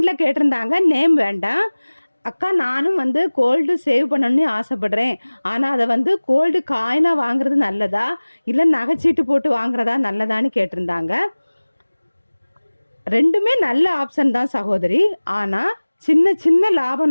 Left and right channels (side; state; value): both; inverted; correlation -1.00